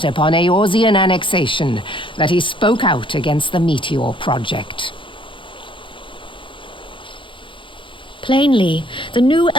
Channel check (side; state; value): right; late; 0.25 ms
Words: upon Eorzean annexation that he spoke out against the Meteor Project. Plainly, the new